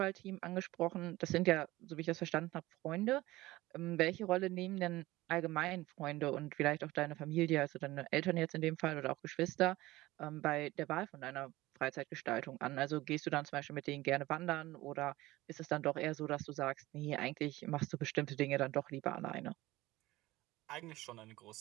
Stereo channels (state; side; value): quieter; left; 18.4 dB